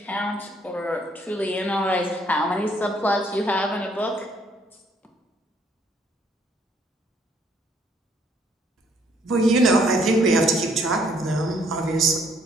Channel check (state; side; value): normal; both; correlation 0.66